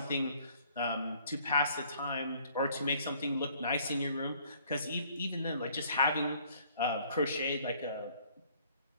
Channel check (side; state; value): both; inverted; correlation -0.60